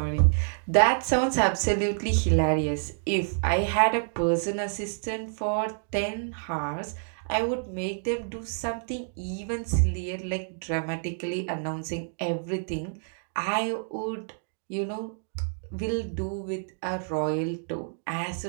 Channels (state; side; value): silent; left; digital silence